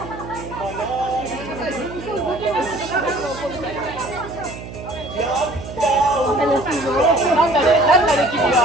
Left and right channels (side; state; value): right; noise; hum, 12 dB below the sound